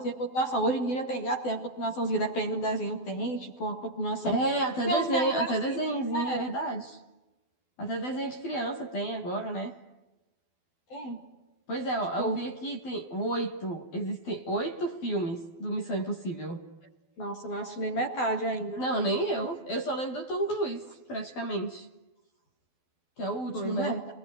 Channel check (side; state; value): right; late; 12 ms